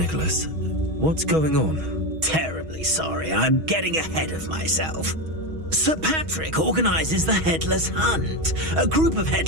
What's going on? Terribly sorry, I'm getting ahead of myself. Sir Patrick organises the Headless Hunt, a group of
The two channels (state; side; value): late; left; 6.3 ms